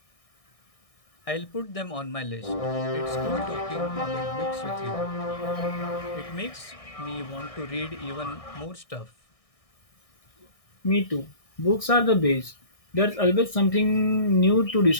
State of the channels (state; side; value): late; right; 1.6 ms